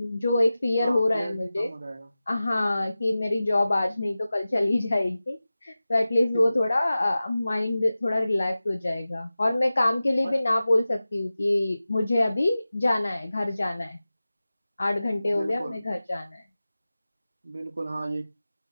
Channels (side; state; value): both; inverted; correlation -0.96